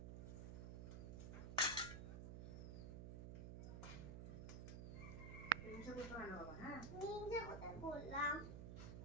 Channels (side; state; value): right; noise; hum, 6 dB below the sound